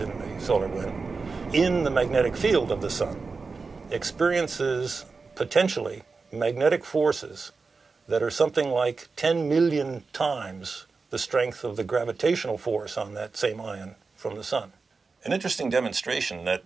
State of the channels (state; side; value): quieter; left; 4.4 dB